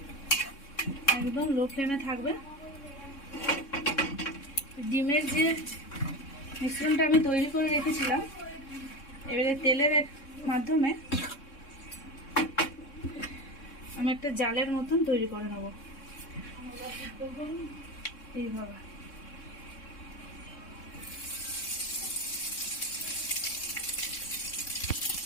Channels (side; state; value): right; late; 3.6 ms